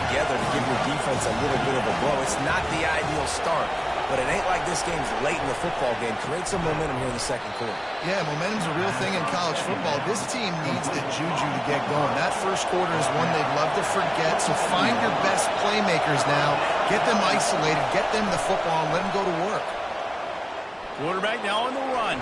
together to give your defense a little bit of a blow. It's not the ideal start, but it ain't like this game's late in the football game. Create some momentum here in the second quarter. Yeah, momentum's a real thing in college football. This team needs the juju to get going. That first quarter is one they'd love to forget, so find your best playmakers now. Get them isolated, get them the football, and let them go to work. Quarterback now on the run,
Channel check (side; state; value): both; identical; correlation 1.00